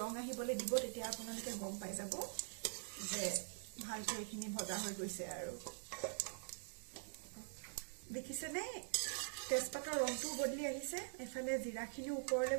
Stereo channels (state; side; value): silent; left; digital silence